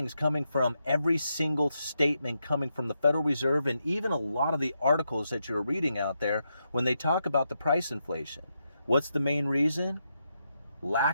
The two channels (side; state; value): both; inverted; correlation -0.83